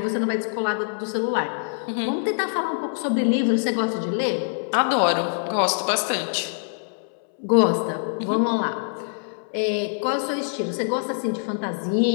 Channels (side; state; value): right; silent; 60 dB below the other